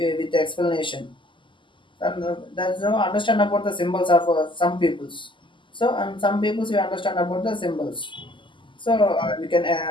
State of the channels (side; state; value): right; late; 0.24 ms